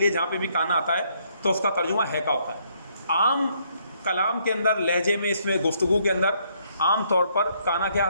جہاں پہ بھی کانا آتا ہے تو اس کا ترجمہ ہے کا ہوتا ہے. عام کلام کے اندر, لہجے میں, اس میں گفتگو کے اندر عام طور پر کانا کیا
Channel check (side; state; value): both; inverted; correlation -0.70